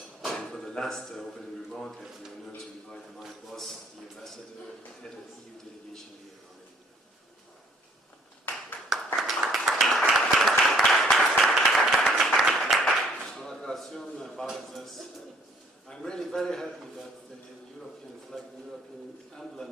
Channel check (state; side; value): normal; both; correlation 0.61